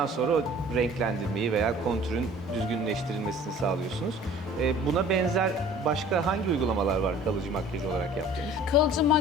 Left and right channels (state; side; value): normal; both; correlation 0.48